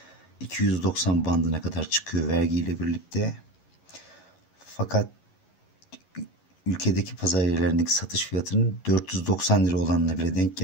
290 bandına kadar çıkıyor vergiyle birlikte. Fakat ülkedeki pazar yerlerindeki satış fiyatının 490 lira olanına bile denk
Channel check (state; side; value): late; right; 11 ms